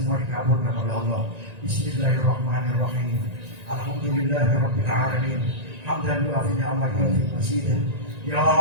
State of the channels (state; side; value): late; left; 1.9 ms